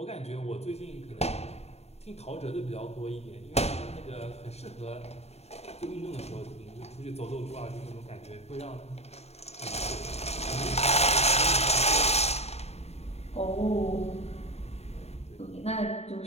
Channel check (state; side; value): late; right; 0.31 ms